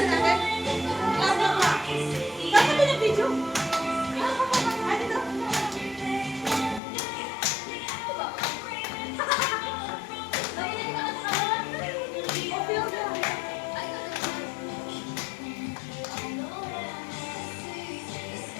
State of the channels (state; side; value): drops out; right; at 6.8 s